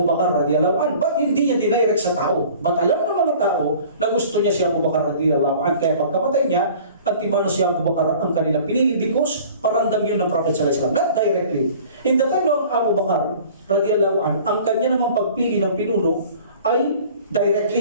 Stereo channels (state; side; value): inverted; both; correlation -0.47